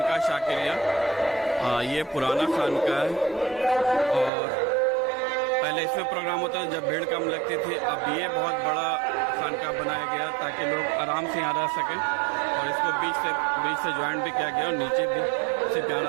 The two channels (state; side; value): drops out; left; at 4.3 s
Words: शाकिरिया, ये पुराना खानका है और पहले इसमें प्रोग्राम होता था जब भीड़ कम लगती थी। अब ये बहुत बड़ा खानका बनाया गया ताकि लोग आराम से यहाँ रह सकें और इसको बीच से ज्वाइन भी किया गया और नीचे भी से